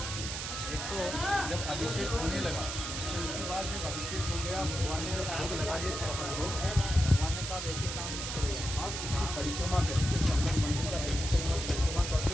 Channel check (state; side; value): noise; right; hiss, 5 dB below the sound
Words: एक तो जब अभिषेक होने लगा तो उसके बाद जब अभिषेक हो गया भगवान ने भोग लगा दिए। भगवान ने कहा वैसे काम नहीं करेगा, आप इसकी परिक्रमा करते मंदिर का परिक्रमा करते